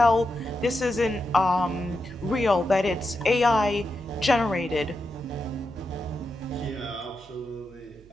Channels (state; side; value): noise; right; hum, 25 dB below the sound